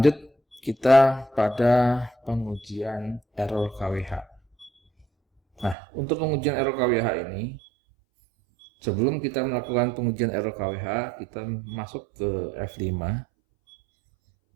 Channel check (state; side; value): drops out; left; at 5.8 s